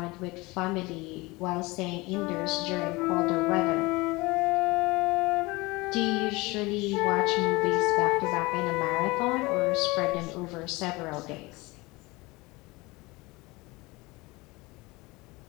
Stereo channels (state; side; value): quieter; right; 23.1 dB